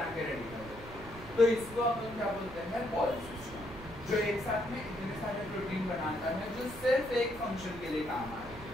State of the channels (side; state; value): right; noise; rumble, 15 dB below the sound